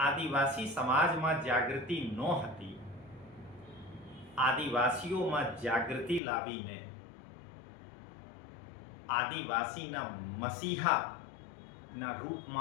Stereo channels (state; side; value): drops out; right; at 6.2 s